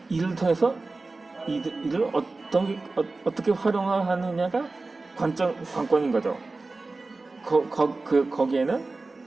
이를 통해서 이를 어떻게 활용하느냐가 관건인 거죠. 거기에는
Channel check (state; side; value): quieter; left; 3.5 dB